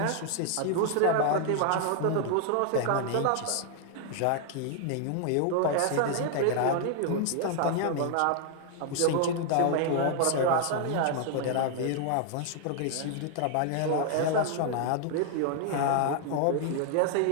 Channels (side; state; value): both; different; correlation 0.00